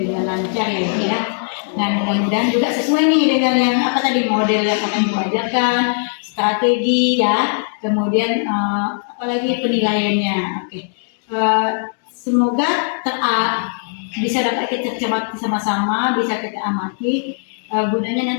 lancar ya Ibu ya. Dan mudah-mudahan juga sesuai nih dengan yang apa tadi model yang akan Ibu ajarkan, strategi ya, kemudian apalagi penilaiannya. Oke. Semoga bisa dapat kita cermati sama-sama, bisa kita amati. Gunanya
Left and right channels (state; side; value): silent; right; digital silence